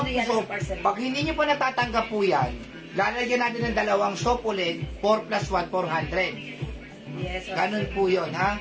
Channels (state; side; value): identical; both; correlation 1.00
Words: soap. Pag hindi nyo pa natatanggap po yan, lalagyan natin ng dalawang soap ulit, 4 plus 1, 400. Yes. Okay. Ganun po yun, ha?